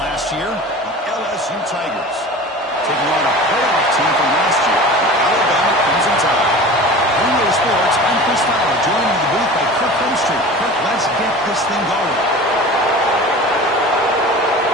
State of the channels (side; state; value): both; normal; correlation 0.37